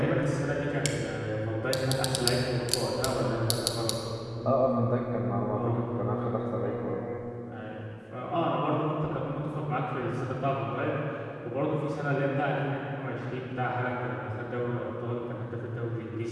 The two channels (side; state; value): both; identical; correlation 1.00